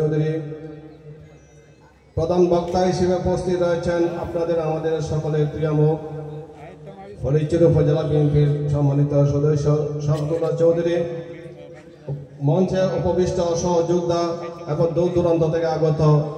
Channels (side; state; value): both; identical; correlation 1.00